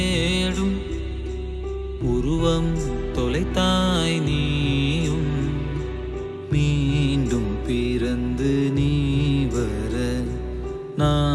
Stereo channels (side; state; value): both; identical; correlation 1.00